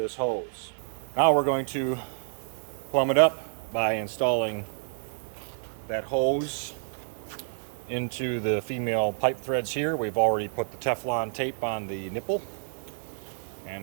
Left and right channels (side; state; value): left; silent; digital silence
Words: hose. Now we're going to plumb it up by installing that hose into the female pipe threads here. We've already put the Teflon tape on the nipple,